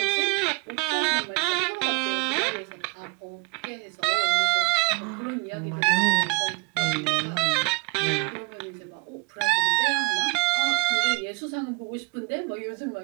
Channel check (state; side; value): quieter; left; 27.1 dB